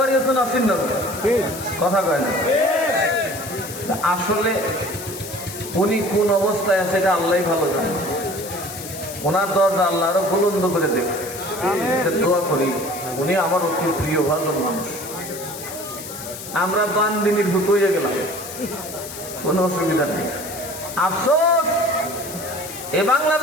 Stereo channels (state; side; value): noise; left; hiss, 11 dB below the sound